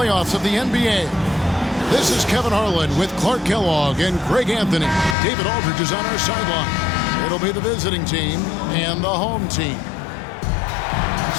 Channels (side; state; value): right; drops out; at 5.2 s